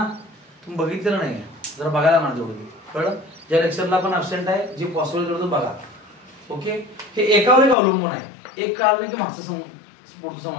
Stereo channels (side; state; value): right; drops out; at 7.8 s